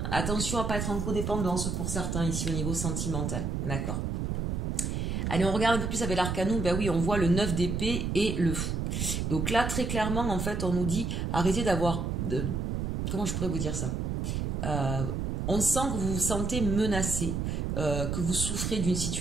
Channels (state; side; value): noise; right; rumble, 1 dB below the sound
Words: Attention à ne pas être en codépendance pour certains ici au niveau sentimental. D'accord? Allez, on regarde un peu plus avec l'arcanou. Ben oui, on voit le 9 d'épée et le fou. Donc là, très clairement, en fait, on nous dit arrêtez d'avoir... Comment je pourrais vous dire ça? On sent que vous vous sentez menacé, que vous souffrez d'une